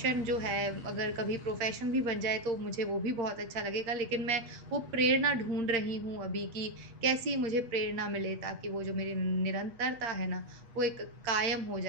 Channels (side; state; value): left; late; 8.7 ms